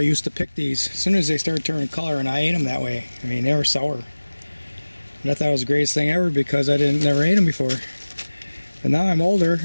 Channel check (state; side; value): inverted; both; correlation -1.00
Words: to pick these as soon as they started turning color, and I ate them that way. I mean, they were sour. And I thought it was the greatest thing ever because I never ate them before. But now I'm older,